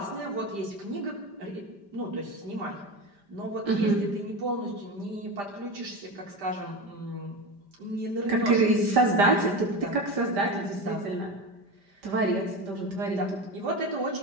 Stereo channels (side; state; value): left; late; 5.1 ms